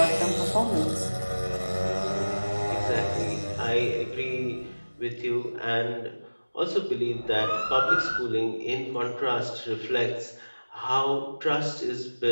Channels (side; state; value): both; inverted; correlation -1.00